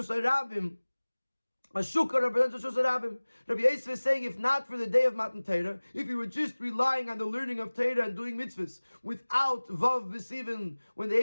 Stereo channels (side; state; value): both; inverted; correlation -1.00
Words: HaRabim, a shukah represents a Rishus HaRabim. Rabbi Yosef is saying, if not for the day of Matan Torah, if you were just relying on the learning of Torah and doing mitzvahs without Vav B'Sivan, when the